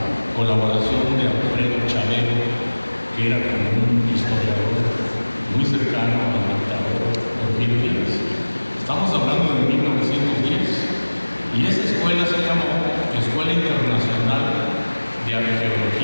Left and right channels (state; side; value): inverted; both; correlation -1.00